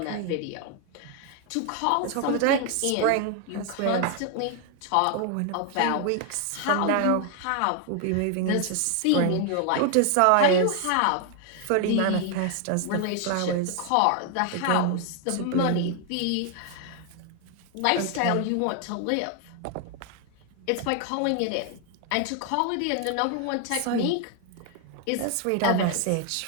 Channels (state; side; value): different; both; correlation 0.00